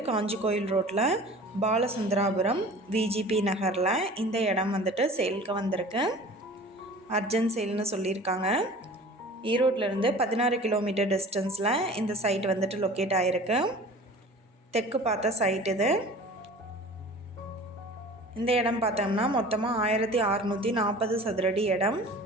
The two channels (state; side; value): normal; both; correlation 0.42